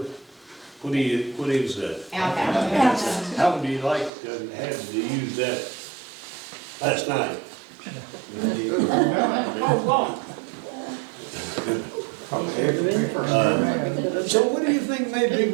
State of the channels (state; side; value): drops out; left; at 4.1 s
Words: What is that? Outhouse. How would you like to have to use that last night? So what do you think made